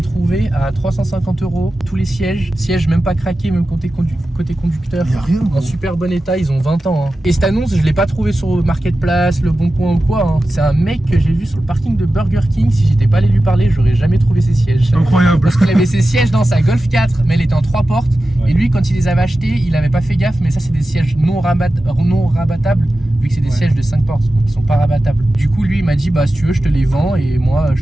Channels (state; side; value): normal; both; correlation 0.94